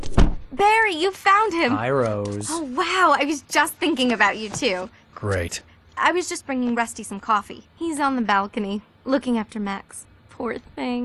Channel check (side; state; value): both; identical; correlation 1.00